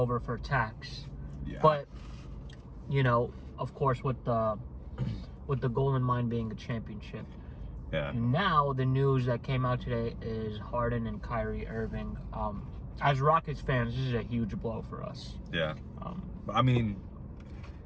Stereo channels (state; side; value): identical; both; correlation 1.00